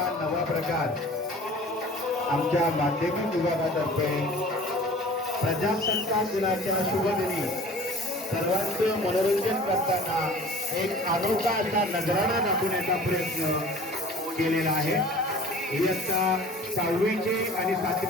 नवा प्रकार आमच्या माध्यमिक विभागातर्फे प्रजासत्ताक दिनाच्या शुभदिनी सर्वांचं मनोरंजन करताना एक अनोखा असा नजराणा दाखवण्याचा प्रयत्न केलेला आहे। इयत्ता 6वीचे आणि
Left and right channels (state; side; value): normal; both; correlation 0.45